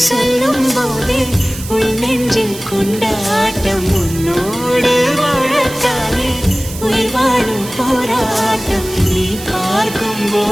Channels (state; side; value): noise; right; hiss, 13 dB below the sound